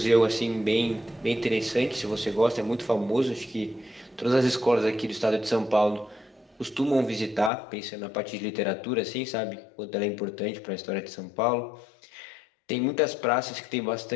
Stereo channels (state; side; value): drops out; right; at 7.5 s